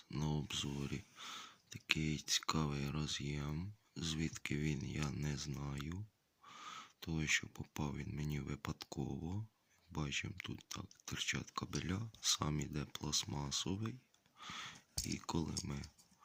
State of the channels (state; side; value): identical; both; correlation 1.00